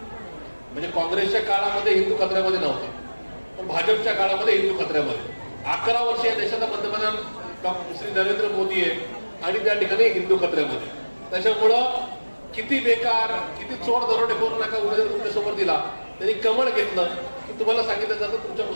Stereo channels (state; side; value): inverted; both; correlation -1.00